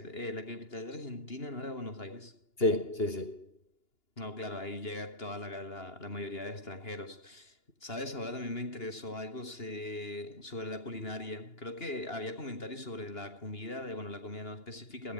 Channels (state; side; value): late; right; 2.9 ms